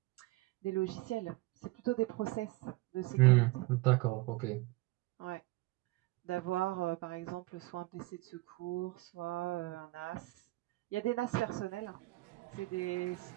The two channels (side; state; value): left; quieter; 21.0 dB